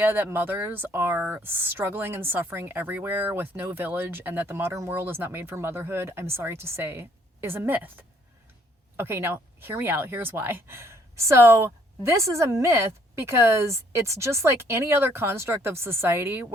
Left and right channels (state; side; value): normal; both; correlation 0.65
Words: that mothers are struggling and suffering everywhere with no village and that the modern world is not made for motherhood, I'm sorry to say, is a myth. Okay, now hear me out. Here's why. So, this is a myth because it's just like any other construct of society